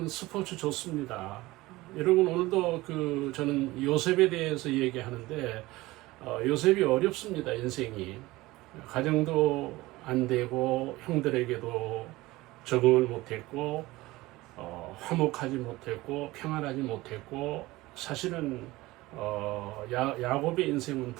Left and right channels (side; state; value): left; quieter; 19.4 dB